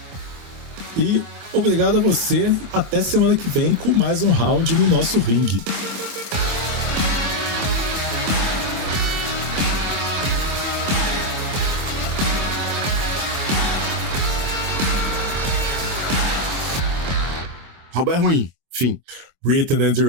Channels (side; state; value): left; late; 24 ms